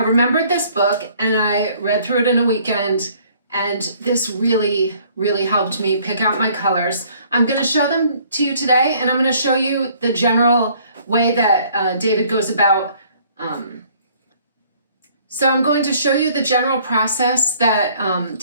remembered this book and I read through it in a weekend, and this really, really helped me pick out my colors. I'm going to show them to you today, and I'm going to show you the general way that David goes about. So I'm going to show you the general process that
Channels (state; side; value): inverted; both; correlation -0.59